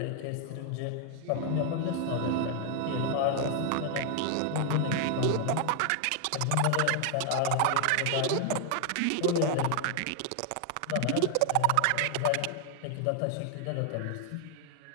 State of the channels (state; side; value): different; both; correlation 0.00